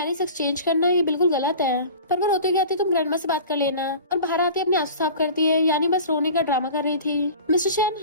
एक्सचेंज करना ये बिल्कुल गलत है। पर वो रोते कहती तुम ग्रैंडमा से बात कर लेना और बाहर आते अपने आंसू साफ करती है, यानी बस रोने का ड्रामा कर रही थी। मिस्टर चैन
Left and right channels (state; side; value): inverted; both; correlation -0.39